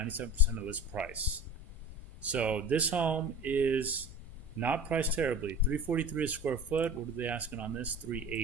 of list price. So this home is not priced terribly. $343 a square foot. What are they asking on this?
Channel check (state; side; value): normal; both; correlation 0.37